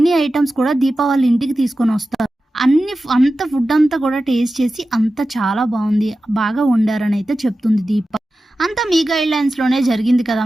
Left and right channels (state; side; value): normal; both; correlation 0.94